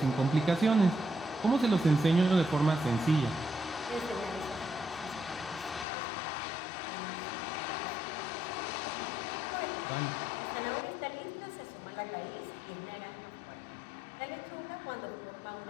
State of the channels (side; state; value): right; drops out; at 5.9 s